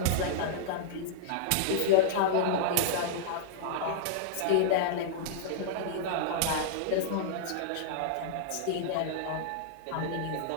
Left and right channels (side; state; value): both; different; correlation -0.01